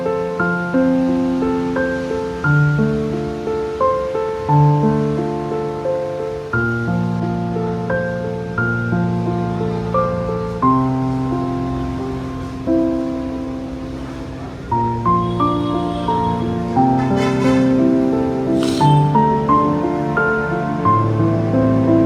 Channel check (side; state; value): both; identical; correlation 1.00